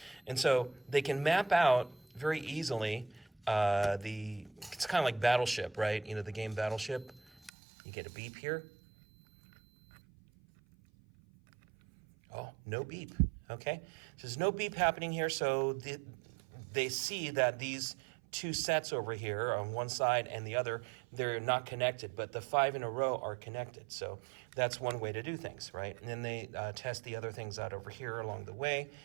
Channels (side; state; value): left; drops out; at 7.5 s